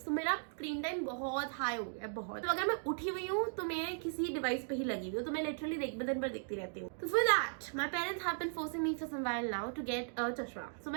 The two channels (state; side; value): silent; left; digital silence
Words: तो मेरा screen time बहुत high हो गया, बहुत। तो अगर मैं उठी हुई हूँ तो मैं किसी डिवाइस पे ही लगी हुई हूँ, तो मैं लिटरली दिन भर देखती रहती हूँ। तो for that my parents have been forcing me for some while now to get a chashma. So